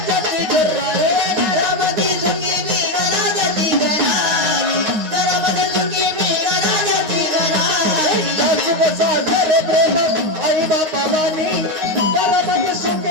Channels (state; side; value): late; left; 9.6 ms